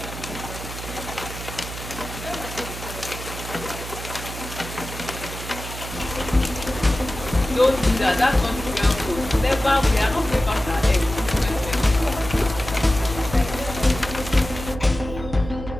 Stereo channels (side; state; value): right; noise; hum, 10 dB below the sound